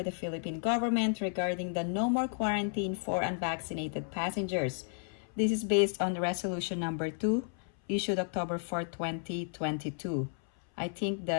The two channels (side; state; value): right; silent; 56 dB below the other